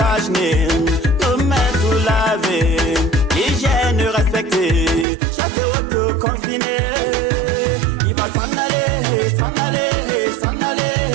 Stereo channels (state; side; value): drops out; left; at 5.1 s